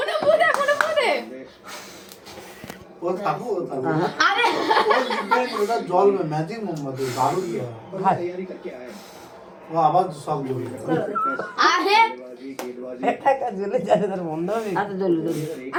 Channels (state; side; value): identical; both; correlation 1.00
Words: কোন পুদে ও থামো আরে ও লিখবে ওটা জল में ম্যাজিক মোমবাতি দারুণ কি হয় ও আবার সব জল আরে টাকা জ্বলে যাবে তার বন্ধ হবে আচ্ছা জ্বলে